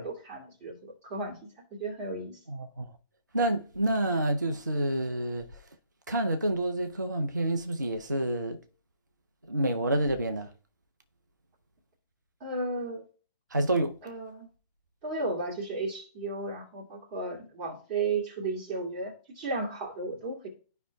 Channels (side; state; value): both; inverted; correlation -0.63